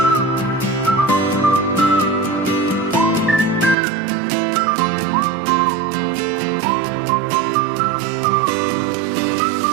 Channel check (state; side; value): drops out; left; at 3.8 s